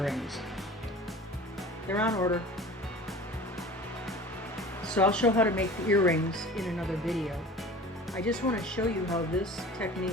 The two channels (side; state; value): both; normal; correlation 0.40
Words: They're on order. So I'll show how to make the earrings in another video. I just want to show you how this